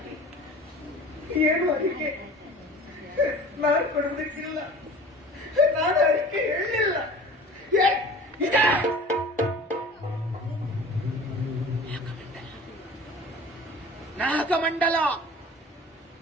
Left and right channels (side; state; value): both; normal; correlation 0.41